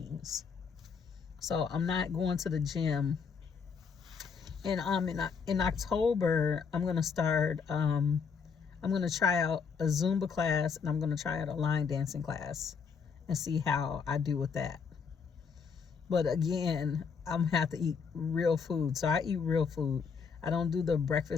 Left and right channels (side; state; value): right; quieter; 6.0 dB